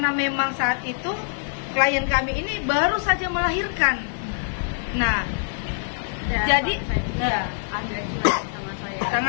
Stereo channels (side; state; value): right; silent; digital silence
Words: memang saat itu klien kami ini baru saja melahirkan. Nah, jadi ya, agak cuek sama saya.